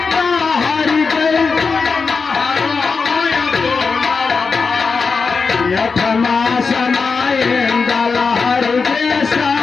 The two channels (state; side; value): quieter; right; 4.9 dB